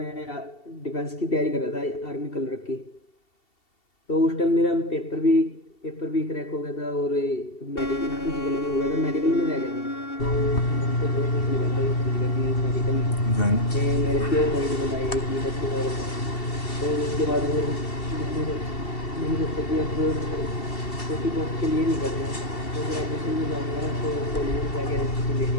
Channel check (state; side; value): late; right; 2.7 ms